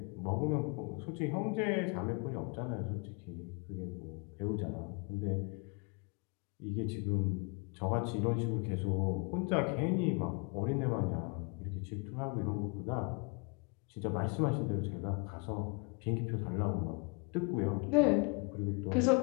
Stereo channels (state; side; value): quieter; right; 33.4 dB